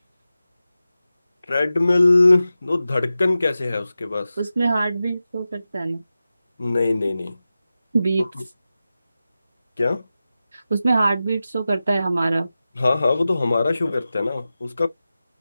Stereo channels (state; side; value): inverted; both; correlation -0.93